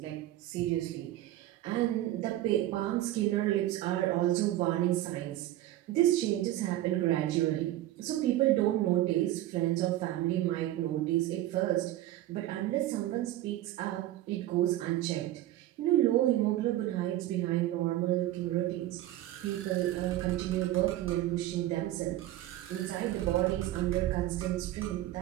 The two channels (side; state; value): left; quieter; 14.5 dB